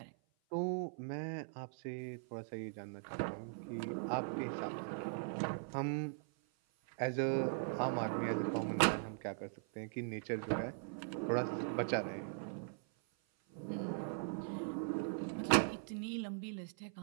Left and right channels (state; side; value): silent; left; 51 dB below the other